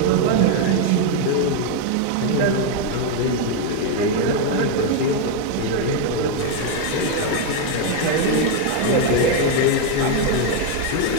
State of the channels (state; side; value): different; both; correlation 0.01